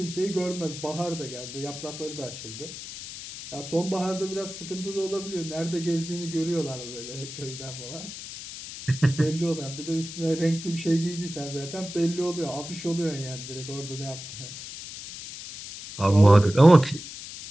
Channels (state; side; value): noise; left; hiss, 11 dB below the sound